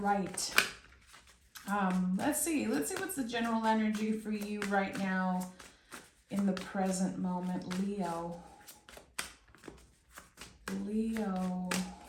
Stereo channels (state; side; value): identical; both; correlation 1.00